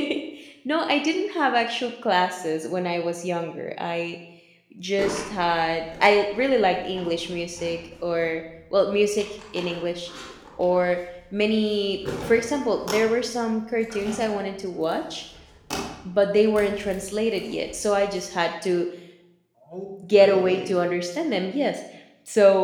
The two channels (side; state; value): both; identical; correlation 1.00